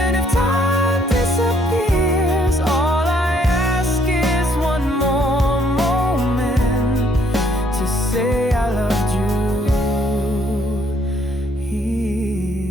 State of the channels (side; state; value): both; normal; correlation 0.67